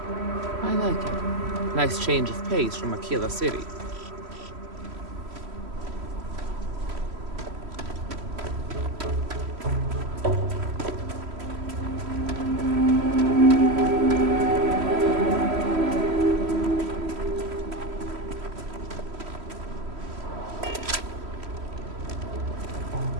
I like it. Nice change of pace from Aquila City.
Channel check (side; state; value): left; late; 3.1 ms